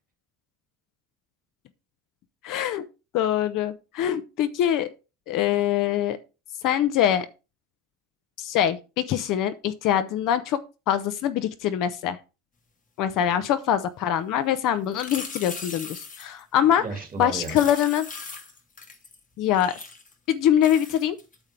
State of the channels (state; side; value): quieter; right; 9.8 dB